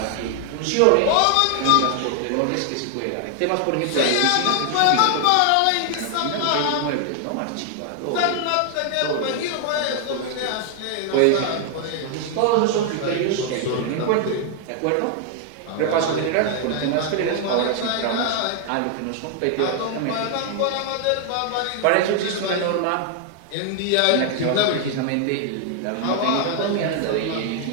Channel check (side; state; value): both; different; correlation 0.00